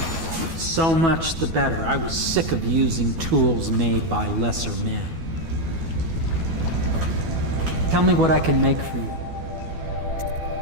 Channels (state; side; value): late; left; 12 ms